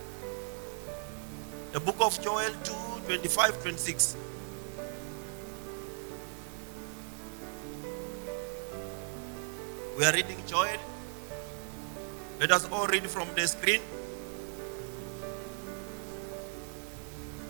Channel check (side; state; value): left; silent; 54 dB below the other